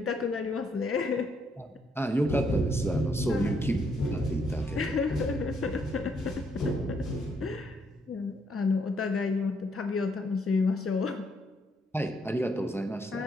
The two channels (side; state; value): both; normal; correlation 0.73